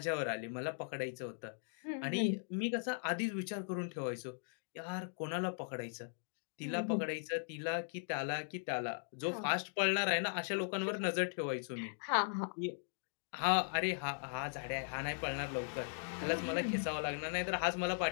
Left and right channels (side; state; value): right; silent; digital silence